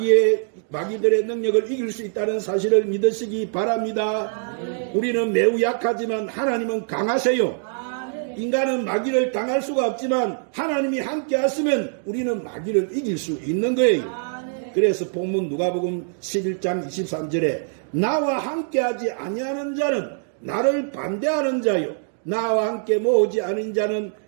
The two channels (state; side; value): silent; left; digital silence